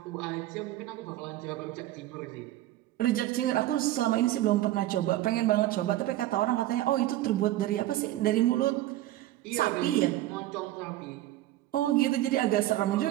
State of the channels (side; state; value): left; quieter; 15.0 dB